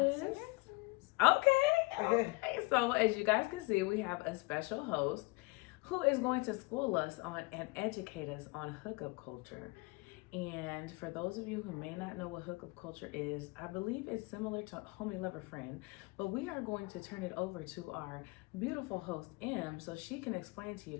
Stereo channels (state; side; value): quieter; right; 25.8 dB